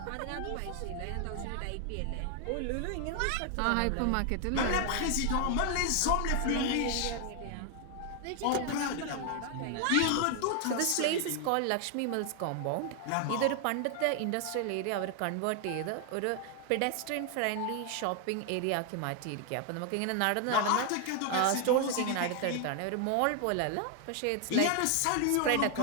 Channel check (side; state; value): both; different; correlation 0.00